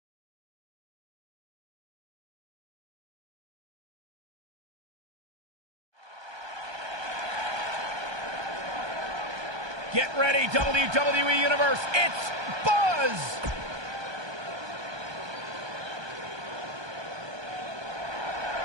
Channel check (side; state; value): left; late; 1.2 ms